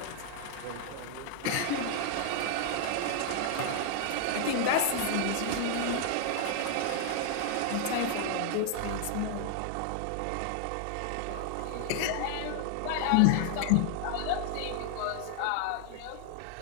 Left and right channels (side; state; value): both; different; correlation 0.00